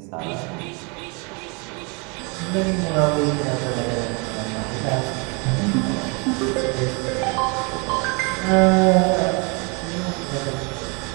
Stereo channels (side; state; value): left; quieter; 31.9 dB